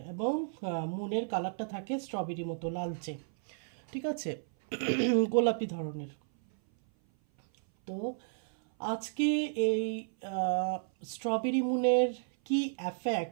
এবং মুনের কালারটা থাকে স্ট্রবেরি মতো লালচে। ঠিক আছে, গোলাপি ধরনের। তো আজকে এই স্ট্রবেরি মুনের কি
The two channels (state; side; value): silent; left; 56 dB below the other